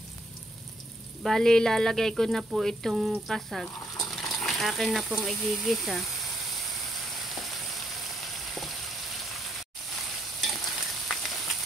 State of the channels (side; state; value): both; normal; correlation 0.73